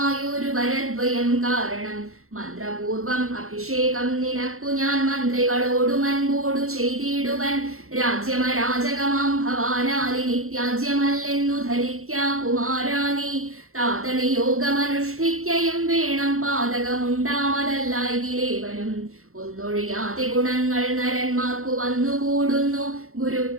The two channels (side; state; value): left; late; 0.63 ms